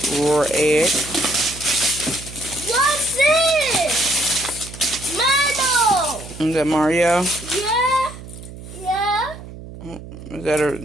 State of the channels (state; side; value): noise; right; hum, 14 dB below the sound